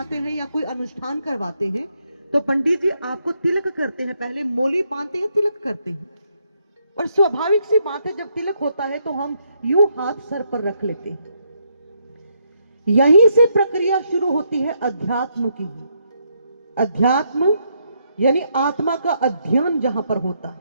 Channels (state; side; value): inverted; both; correlation -0.76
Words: हैं या कोई अनुष्ठान करवाते हैं तो पंडित जी आपको तिलक करते हैं, पहले मोली बांधते हैं, तिलक करते हैं। और स्वाभाविक सी बात है, जब तिलक होता है तो हम यूं हाथ सर पर रख लेते हैं। यहीं से प्रक्रिया शुरू होती है अध्यात्म की। अध्यात्म यानी आत्मा का अध्ययन जहां पर होता है,